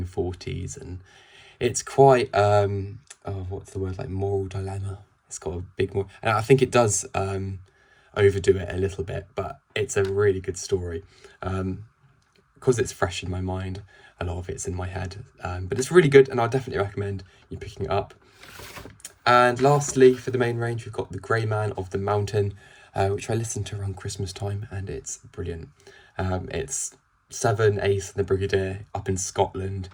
and it's quite what's the word, like moral dilemma. It's got a big more, and I think it does overdo it a little bit, but it's a really good story. Because it's fresh in my mind, a lot of it's in my head, but it's really good, and I'll definitely recommend you picking it up. And lastly, for the main range, we've got The Grey Man of the Mountain, which I listened to around Christmas time, and it's brilliant. It's Seven, Ace and the Brigadier up in Scotland.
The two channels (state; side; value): identical; both; correlation 1.00